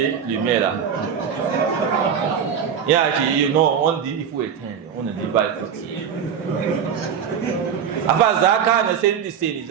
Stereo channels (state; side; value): quieter; left; 7.7 dB